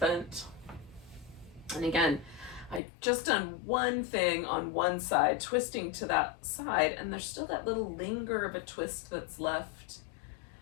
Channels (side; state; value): right; drops out; at 2.8 s